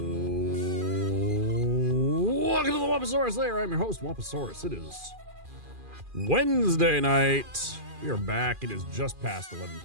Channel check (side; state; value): left; late; 2.4 ms